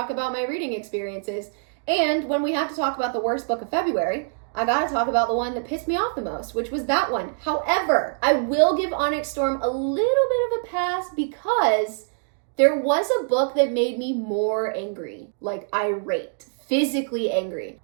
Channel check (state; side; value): silent; left; digital silence